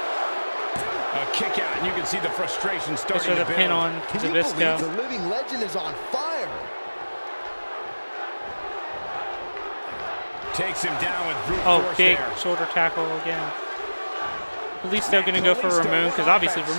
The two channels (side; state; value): both; inverted; correlation -1.00